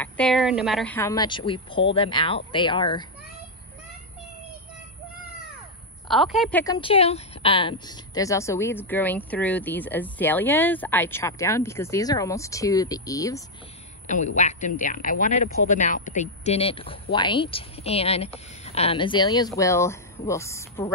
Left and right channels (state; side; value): normal; both; correlation -0.01